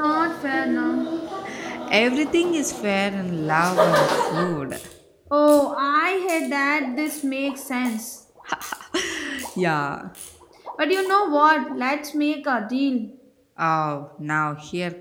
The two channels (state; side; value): identical; both; correlation 1.00